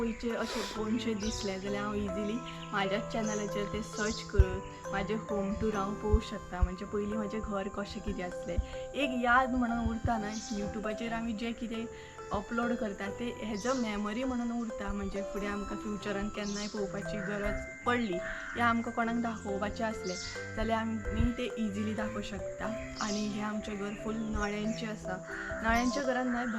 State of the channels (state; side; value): identical; both; correlation 1.00